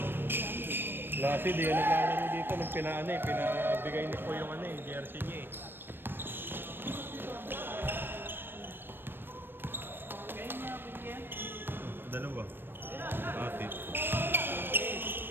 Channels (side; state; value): left; late; 0.098 ms